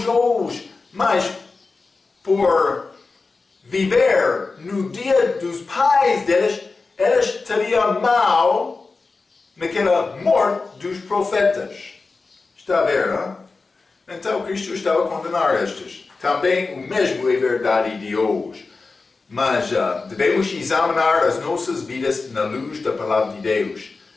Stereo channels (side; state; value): right; quieter; 4.0 dB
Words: hoje. Mas por viver no dia dos pais deles, eles teriam mal naquela morte dos profetas. Está a ver, não? Então Cristo estava a condenar estes. Também o mesmo é verdade de hoje. Mas devemos examinar as nossas vidas na luz da palavra de Deus.